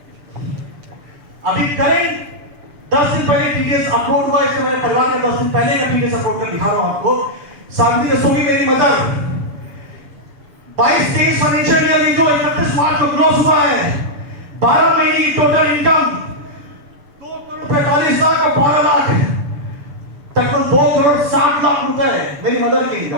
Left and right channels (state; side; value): late; left; 6.9 ms